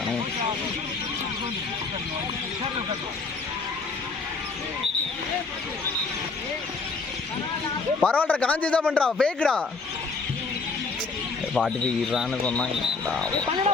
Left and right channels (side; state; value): right; quieter; 4.3 dB